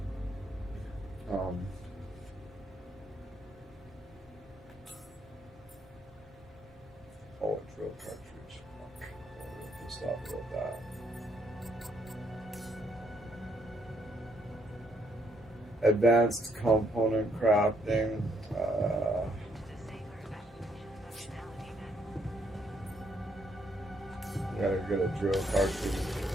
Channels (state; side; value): normal; both; correlation 0.72